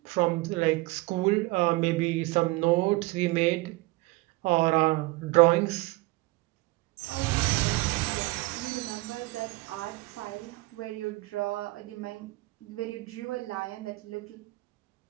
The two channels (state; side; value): quieter; left; 21.6 dB